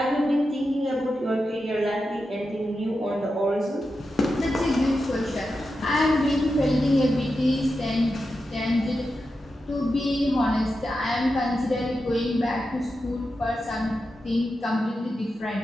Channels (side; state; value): both; normal; correlation 0.89